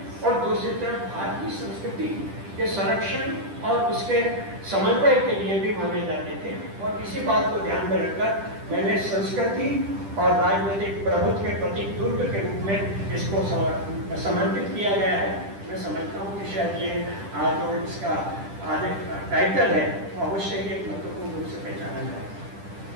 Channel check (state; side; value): late; left; 10 ms